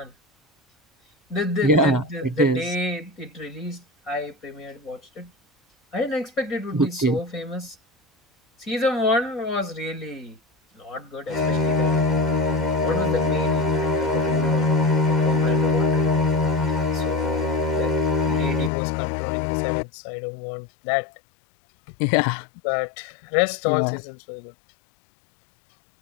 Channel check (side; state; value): right; drops out; at 18.7 s